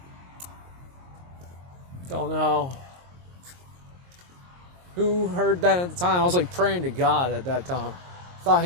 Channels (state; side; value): late; left; 22 ms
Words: Don't know who heard that at the time. I was like praying to God at that time. Thought